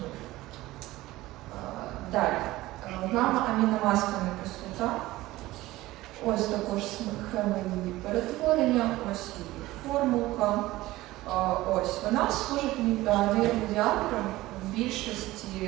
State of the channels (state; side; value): quieter; left; 17.7 dB